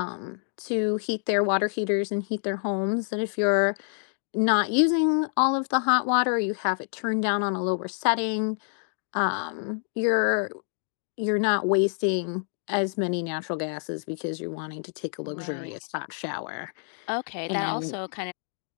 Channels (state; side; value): silent; right; digital silence